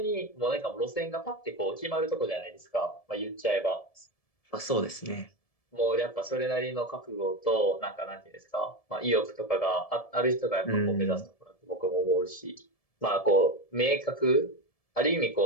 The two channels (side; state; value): right; late; 1.7 ms